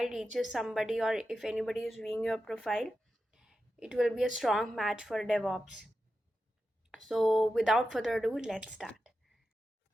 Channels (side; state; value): both; normal; correlation 0.91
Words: reaches somebody, or if anybody is viewing your profile, it will be a strong match for DevOps. So, without further ado, let's start.